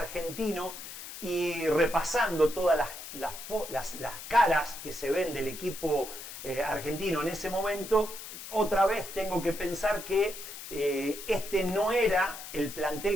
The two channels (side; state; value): left; noise; hiss, 11 dB below the sound